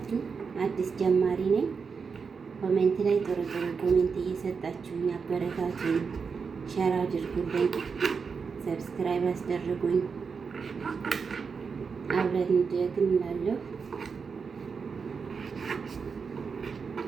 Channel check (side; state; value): left; quieter; 5.5 dB